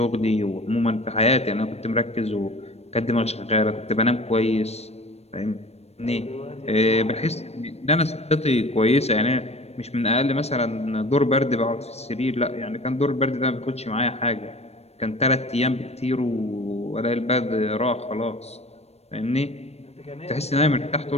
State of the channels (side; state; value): right; late; 0.31 ms